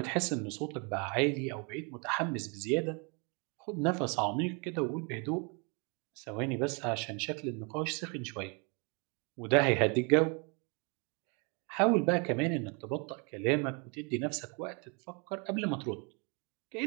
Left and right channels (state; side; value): quieter; left; 33.9 dB